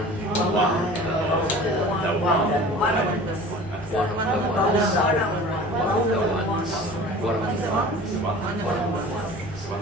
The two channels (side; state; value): both; normal; correlation 0.42